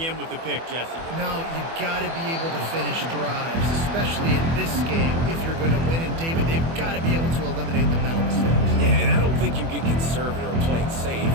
end with the pick, Jesse. No, you got to be able to finish drives, especially in this game. If you're going to win, and David, they've got to be able to eliminate the mental mistakes. Yeah, and I don't think you get conservative or play it safe.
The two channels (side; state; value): left; late; 24 ms